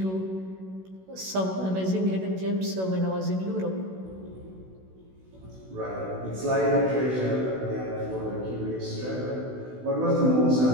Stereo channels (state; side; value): late; left; 16 ms